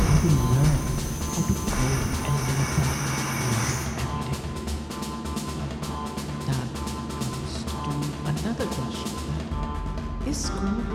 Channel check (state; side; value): identical; both; correlation 1.00